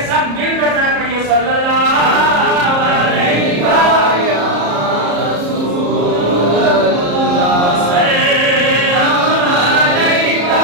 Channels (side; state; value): left; late; 34 ms